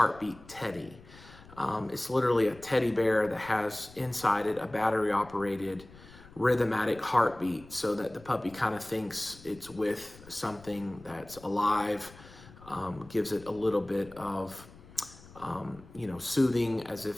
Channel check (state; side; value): noise; left; rumble, 21 dB below the sound